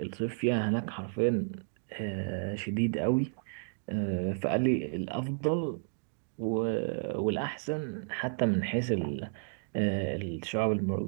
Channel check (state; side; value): silent; left; digital silence